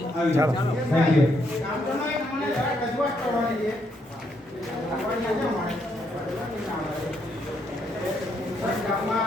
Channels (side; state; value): both; normal; correlation 0.75